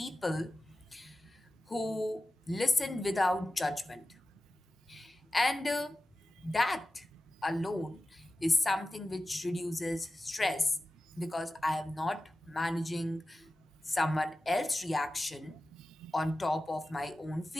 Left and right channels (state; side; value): normal; both; correlation 0.94